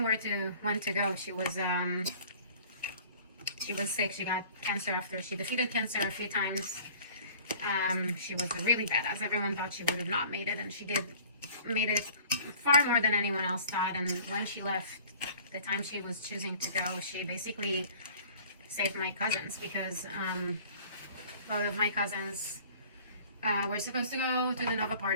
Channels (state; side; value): inverted; both; correlation -0.49